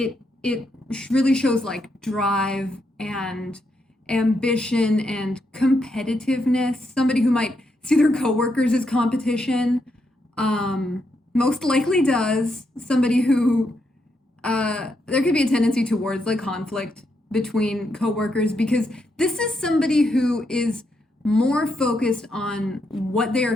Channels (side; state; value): both; normal; correlation 0.80